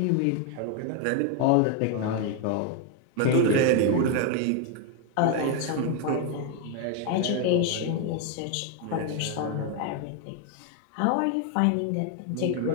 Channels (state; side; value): different; both; correlation 0.01